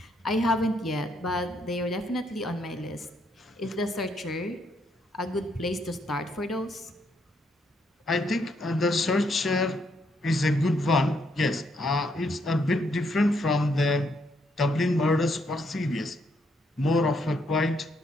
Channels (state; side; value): normal; both; correlation 0.74